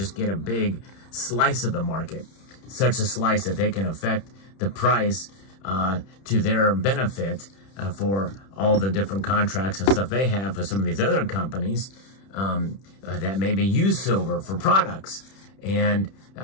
get a big slice of the market, such a slice that they can affect the price to their benefit for all the different contracts and stuff they have for some of these other companies that maybe use silver for products. And,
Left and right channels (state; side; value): late; right; 31 ms